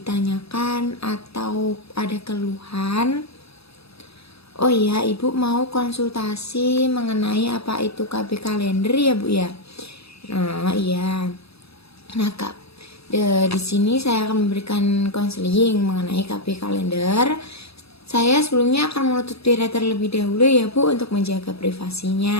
atau ada keluhan? Oh iya, Ibu mau konsultasi mengenai apa itu KB kalender ya, Bu ya? Nah, iya. Nah, Kak, di sini saya akan memberikan konseling mengenai KB kalender. Saya sebelumnya akan menutup diri terlebih dahulu ya, Bu, untuk menjaga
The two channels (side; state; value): right; late; 0.78 ms